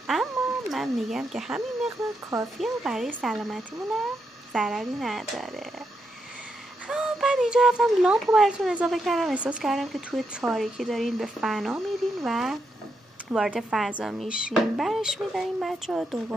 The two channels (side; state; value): both; normal; correlation 0.82